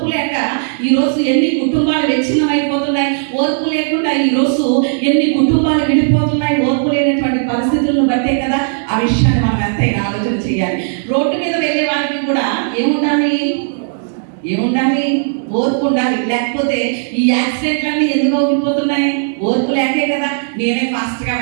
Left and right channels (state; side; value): silent; left; digital silence